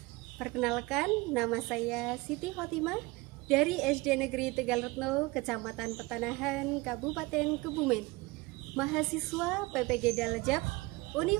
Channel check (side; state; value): left; quieter; 22.9 dB